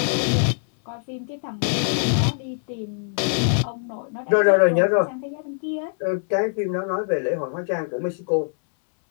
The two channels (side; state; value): right; silent; 60 dB below the other